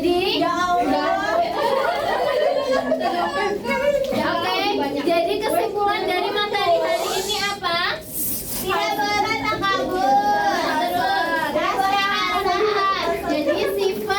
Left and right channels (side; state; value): both; identical; correlation 1.00